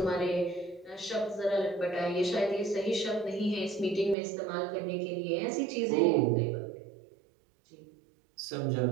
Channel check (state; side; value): drops out; left; at 4.2 s